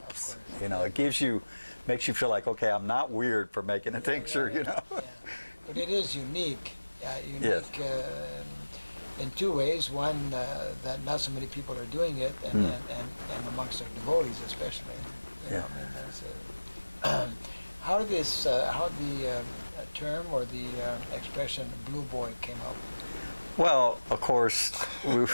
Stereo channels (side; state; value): both; inverted; correlation -1.00